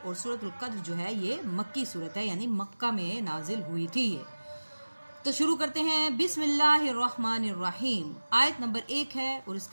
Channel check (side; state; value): both; inverted; correlation -1.00